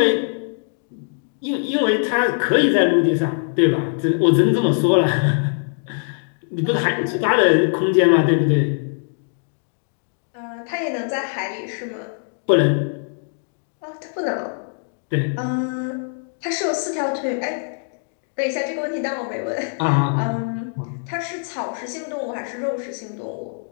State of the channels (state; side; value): silent; right; 59 dB below the other